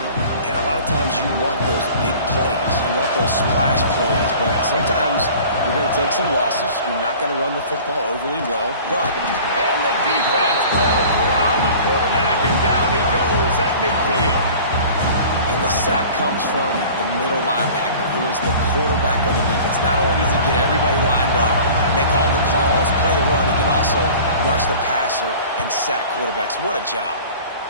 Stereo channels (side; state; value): both; inverted; correlation -0.44